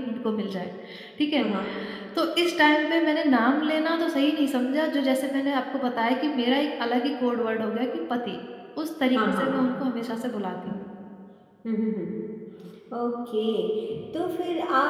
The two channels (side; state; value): both; identical; correlation 1.00